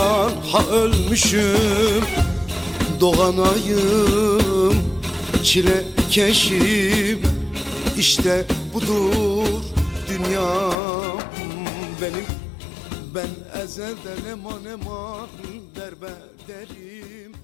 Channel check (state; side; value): drops out; right; at 10.8 s